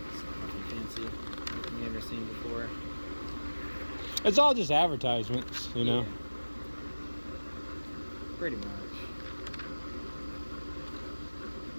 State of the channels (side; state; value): both; inverted; correlation -1.00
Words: Nothing fancy. Nothing you've never seen before. It's all just advertisements, you know. Yeah. Pretty much.